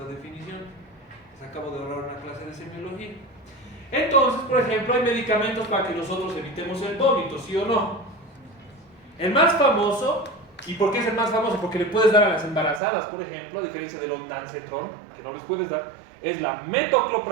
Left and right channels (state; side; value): drops out; left; at 12.8 s